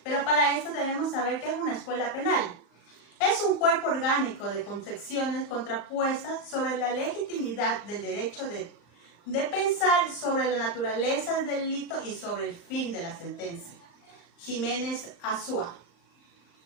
pero para esto debemos saber qué es una escuela penal. Es un cuerpo orgánico de concepciones contrapuestas sobre la legitimidad del derecho de pensar sobre la naturaleza del delito y sobre el fin de la sentencia. Jiménez Azúa.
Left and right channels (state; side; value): late; right; 34 ms